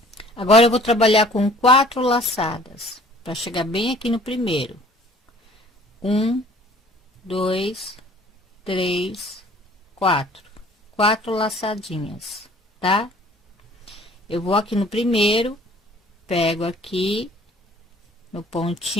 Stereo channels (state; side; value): normal; both; correlation 0.53